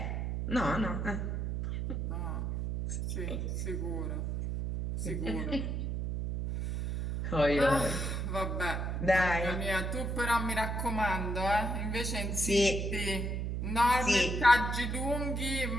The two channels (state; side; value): noise; right; hum, 2 dB below the sound